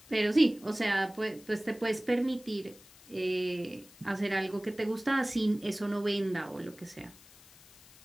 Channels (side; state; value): left; noise; hiss, 23 dB below the sound